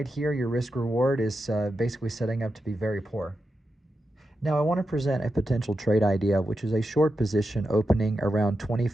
here, your risk reward is basically setting up to be very poor. Now I want to present a potential trade idea, which is a short position opening around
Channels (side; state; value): both; normal; correlation 0.88